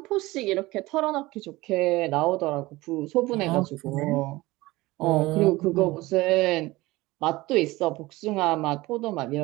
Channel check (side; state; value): left; quieter; 20.0 dB